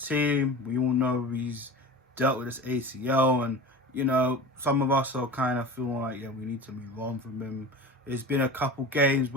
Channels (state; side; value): normal; both; correlation 0.33